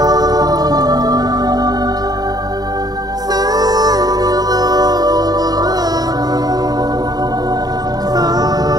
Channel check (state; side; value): late; left; 0.19 ms